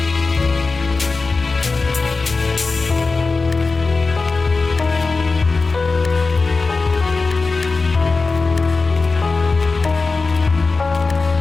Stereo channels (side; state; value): right; quieter; 4.0 dB